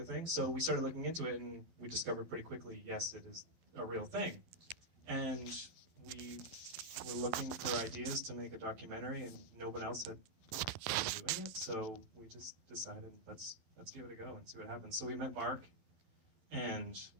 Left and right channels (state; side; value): late; left; 12 ms